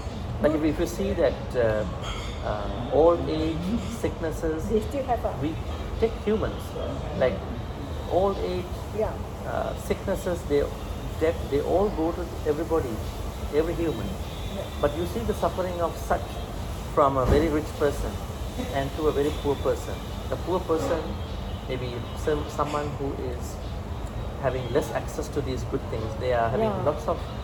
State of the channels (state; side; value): identical; both; correlation 1.00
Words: Like if you see that old age sicknesses, They still have we take humans, like old age yeah. sicknesses, they all go to everybody, every human. But you see the suffering of such from a very rich person and to a very poor person. The poor person, maybe someone who is having less access to these good things, they are having Yeah. lots of